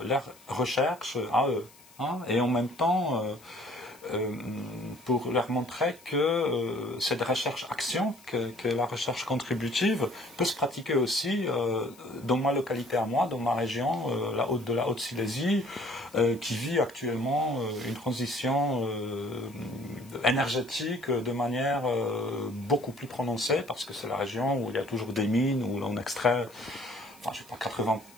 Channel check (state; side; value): noise; left; hiss, 25 dB below the sound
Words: leur recherche à eux. Hein, et en même temps, pour leur montrer que cette recherche-action, que la recherche contributive peut se pratiquer aussi dans ma localité à moi, dans ma région, de la Haute-Silésie, qui vit actuellement une transition énergétique de manière beaucoup plus prononcée, parce que c'est la région où il y a toujours des mines, où l'on extrait,